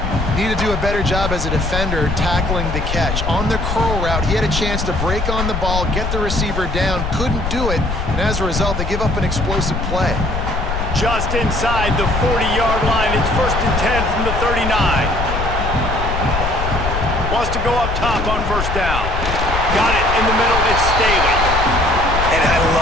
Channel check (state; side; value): noise; left; rumble, 3 dB below the sound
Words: Need to do a better job as a defender tackling the catch. On the curl route, he had a chance to break on the ball, get the receiver down, couldn't do it, and as a result, they give up an explosive play. Just inside the 40-yard line. It's first and 10 from the 39. Wants to go up top on first down. Got it in the middle. It's Staley. And I